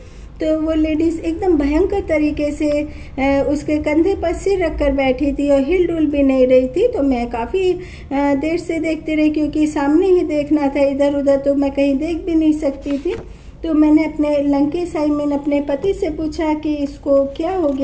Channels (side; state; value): both; identical; correlation 1.00